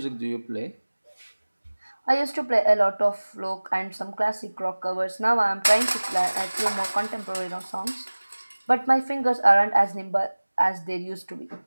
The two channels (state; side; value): inverted; both; correlation -1.00